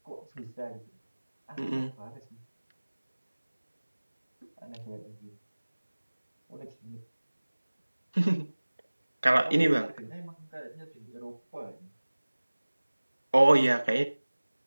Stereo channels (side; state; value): both; inverted; correlation -1.00